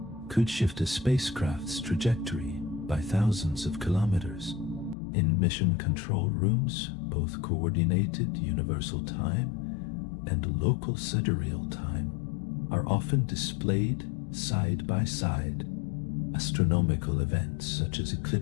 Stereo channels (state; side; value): drops out; right; at 5.0 s